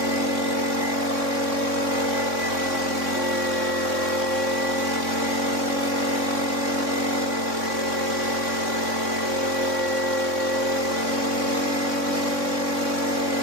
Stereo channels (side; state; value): left; late; 3.6 ms